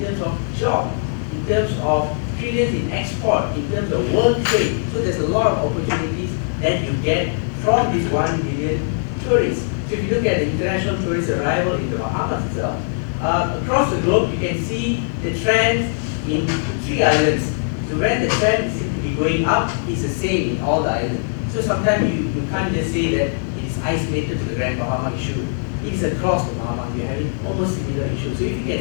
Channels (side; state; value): right; silent; 58 dB below the other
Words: of job, in terms of trillions in export, in terms of world trade. So there's a lot of opportunities that you get from this 1 billion tourists. So if you look at the international tourist arrival in the Bahamas itself, across the globe you can see the trend in the 3 islands. So when the trend seems to be going up, it's the same in all the islands. So sometimes you can't just say that it is isolated to the Grand Bahama issue. It is across the Bahamas. We're having almost similar issues. So if you